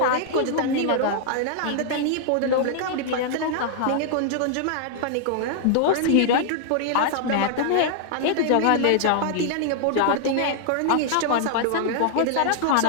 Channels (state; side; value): different; both; correlation -0.01